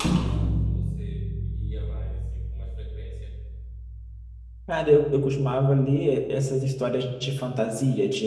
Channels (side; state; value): both; identical; correlation 1.00